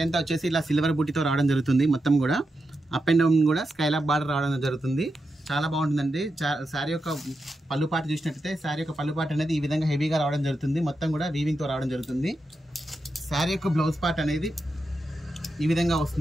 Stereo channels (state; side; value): normal; both; correlation 0.87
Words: అంతా వచ్చేసి ఇలా సిల్వర్ బుట్టితో రావడం జరుగుతుంది. మొత్తం కూడా అప్ అండ్ డౌన్ కూడా స్కైలాప్ బార్డర్ రావడం జరుగుతుంది. చాలా బాగుంటుందండి. శారీ యొక్క పళ్ళు పాట చూసినట్టయితే శారీ యొక్క పళ్ళు పాట అనేది ఈ విధంగా హెవీగా రావడం జరుగుతుంది. మొత్తం కూడా వీవింగ్తో రావడం జరుగుతుంది. శారీ యొక్క బ్లౌజ్ పార్ట్ అనేది ఈ విధంగా